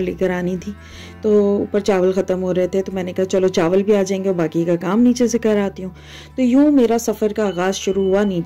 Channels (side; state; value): both; identical; correlation 1.00